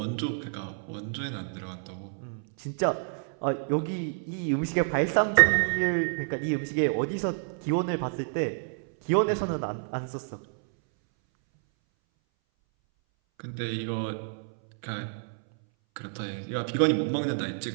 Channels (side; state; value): left; silent; 59 dB below the other